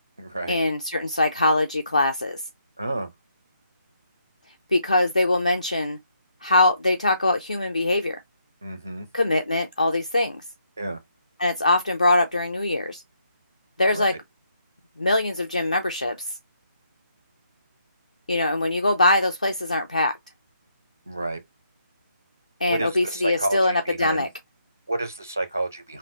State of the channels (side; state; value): both; inverted; correlation -0.75